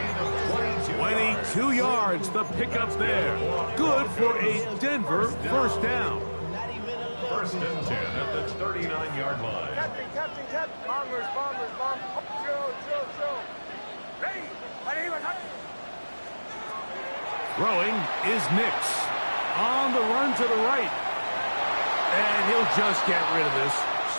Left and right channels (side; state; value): both; inverted; correlation -1.00